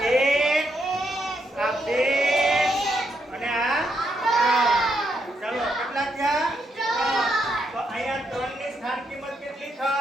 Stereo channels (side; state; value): both; normal; correlation 0.78